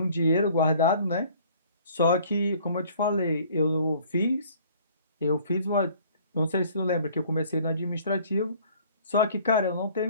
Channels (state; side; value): inverted; both; correlation -0.54